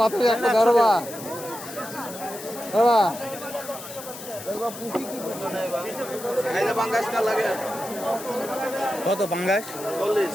বাতাসি একটা দরবা বাবা আইলে বাঙ্গাস কাল লাগে কত পাঙ্গাস 40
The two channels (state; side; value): noise; left; hiss, 12 dB below the sound